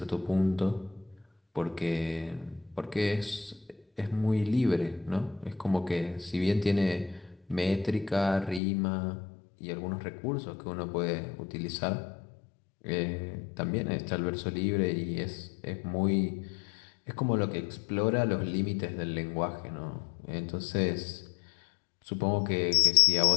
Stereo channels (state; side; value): drops out; right; at 8.6 s